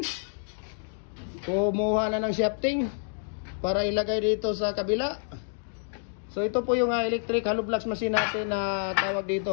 Kumuha na ng shafting para ilagay dito sa kabila. So ito po yung electric hollow blocks machine natin na tawag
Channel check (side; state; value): right; silent; digital silence